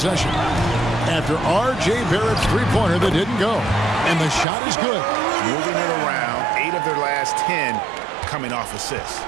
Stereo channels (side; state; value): left; drops out; at 4.5 s